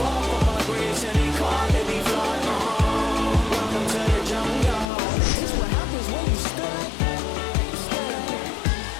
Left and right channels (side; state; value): right; drops out; at 4.9 s